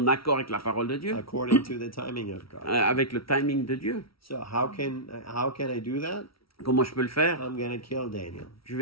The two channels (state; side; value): late; right; 0.75 ms